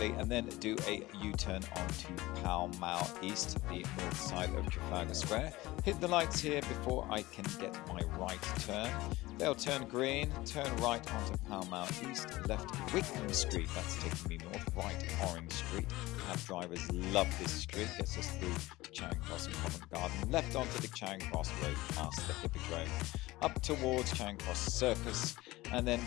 and then do a U-turn onto Pall Mall East, the north side of Trafalgar Square. Hit the lights here before I can get my right turn. They'll turn green, turn right onto Pall Mall East, left Wickham Street, that's taking me north, right Orange Street. Cab drivers love this street, gets us through to Charing Cross and Covent Garden, left onto the Charing Cross Road past the Hippodrome, up towards Charing Cross Circus, and then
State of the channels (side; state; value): right; quieter; 19.0 dB